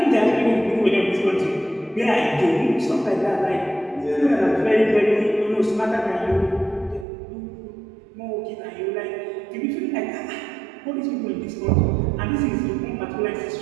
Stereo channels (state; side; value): drops out; left; at 7.1 s